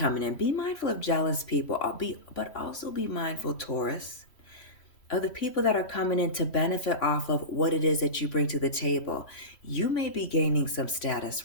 in. Be mindful of jealous people, but also be mindful, Taurus, of the people that are coming in to benefit off of what it is that you bring to the table. You may be gaining some status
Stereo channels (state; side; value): late; right; 3.1 ms